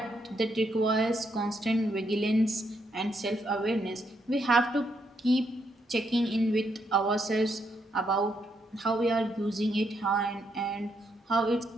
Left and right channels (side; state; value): both; normal; correlation 0.77